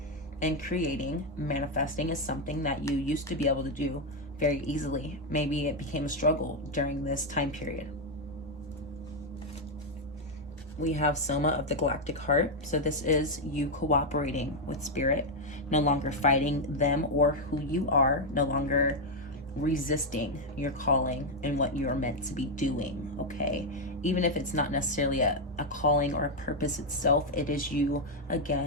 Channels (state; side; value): normal; both; correlation 0.03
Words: And creating, manifesting is something that you used to be able to do very easily. Maybe it became a struggle during this time period. We have Soma of the Galactic Heart. So this is you cooperating with spirit, no longer fighting them or who you are, no longer resisting your calling and what you are meant to be doing, okay? Even if it's not necessarily a calling or a purpose itself, it is you,